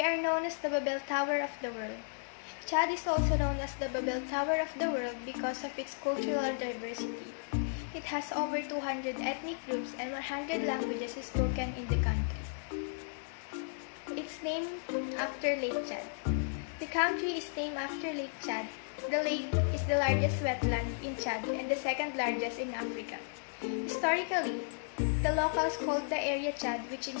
are known as the Babel Tower of the world. Chad is also known as the Babel Tower of the world because of its cultural diversity. It has over 200 ethnic groups and 100 languages spoken in the country. It's named after Lake Chad. The country is named after Lake Chad. The lake is the largest wetland in Chad and the second largest in Africa. Historically, the locals called the area Chad, which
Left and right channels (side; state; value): right; silent; digital silence